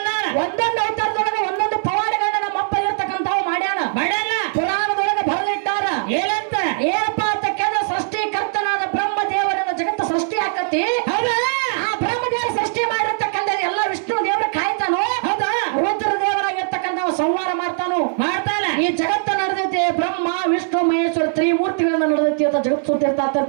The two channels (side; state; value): left; silent; digital silence